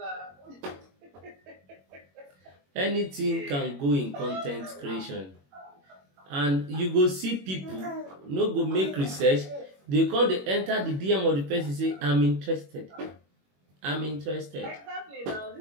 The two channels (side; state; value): left; late; 21 ms